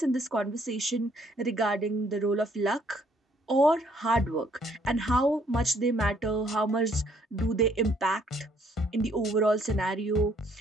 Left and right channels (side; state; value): both; normal; correlation 0.66